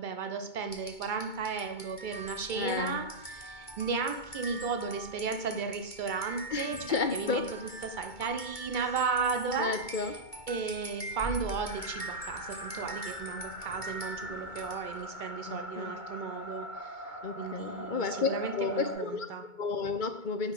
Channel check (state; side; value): late; right; 2.2 ms